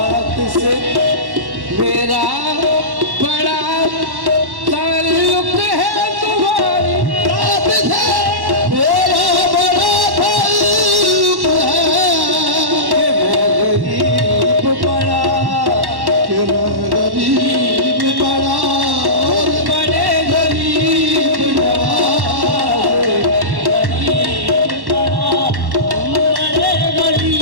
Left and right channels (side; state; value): left; late; 1.1 ms